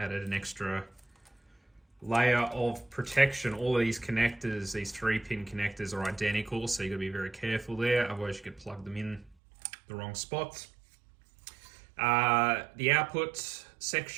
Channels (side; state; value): left; drops out; at 9.3 s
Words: extra layer of protection. All of these connectors, these 3-pin connectors, are identical, so you've got to be very careful there, otherwise you could plug them in the wrong spots. The output